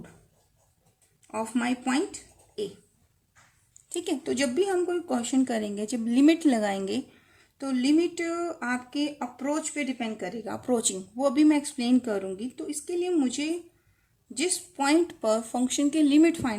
of my point ए. ठीक है. तो जब भी हम कोई क्वेश्चन करेंगे, जब लिमिट लगाएंगे तो लिमिट आपके अप्रोच पे डिपेंड करेगा. अप्रोचिंग वो अभी मैं एक्सप्लेन करूँगी. तो इसके लिए मुझे जिस पॉइंट पर फंक्शन की लिमिट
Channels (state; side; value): identical; both; correlation 1.00